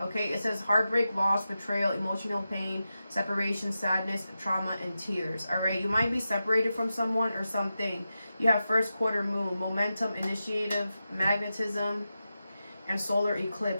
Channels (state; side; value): inverted; both; correlation -0.91